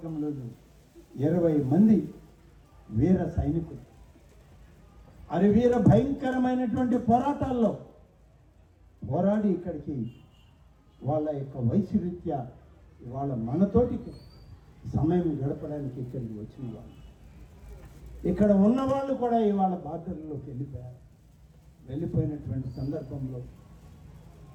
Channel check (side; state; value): both; identical; correlation 1.00